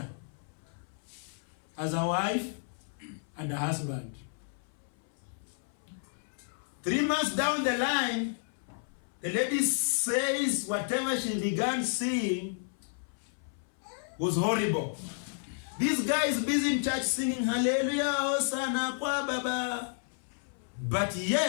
as a wife and a husband. 3 months down the line, the lady says whatever she began seeing was horrible. This guy is busy in church singing Hallelujah, Hosanna, Kwa Baba. But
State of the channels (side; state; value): right; silent; 57 dB below the other